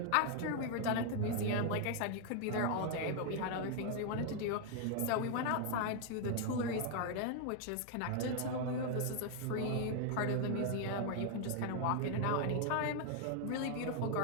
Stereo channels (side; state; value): both; different; correlation 0.00